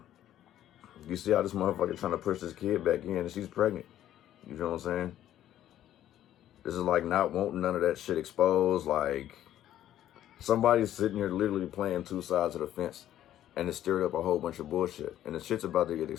You see how this motherfucker trying to push this kid back in and she's pregnant. You feel what I'm saying? This is like not wanting none of that shit exposed. Like, somebody's sitting here literally playing two sides of the fence and it stirred up a whole bunch of bullshit. And the shit's about to get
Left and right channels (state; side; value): quieter; right; 12.1 dB